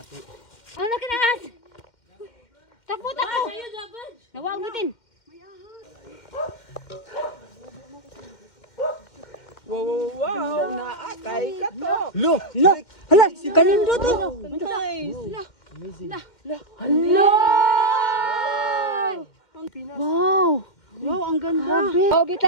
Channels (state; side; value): late; right; 2.1 ms